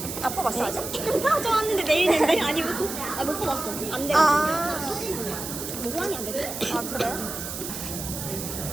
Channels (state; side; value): noise; right; hiss, 7 dB below the sound